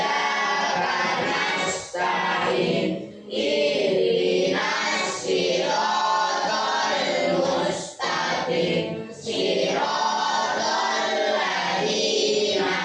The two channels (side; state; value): both; identical; correlation 1.00